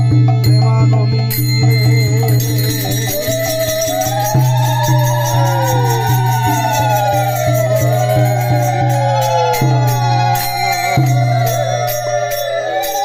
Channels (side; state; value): both; identical; correlation 1.00